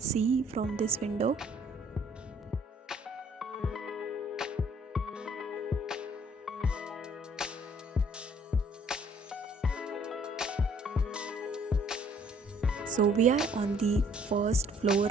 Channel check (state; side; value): normal; both; correlation 0.61